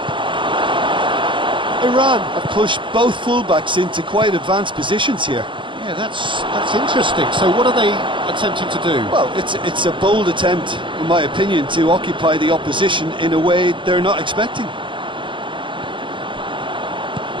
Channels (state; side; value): late; left; 0.24 ms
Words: it! Iran have pushed both fullbacks into quite advanced positions here. Yeah, that's interesting. So what are they attempting to do? Well, it's a bold attempt, in my opinion, to occupy the opposition in a way they're not expecting.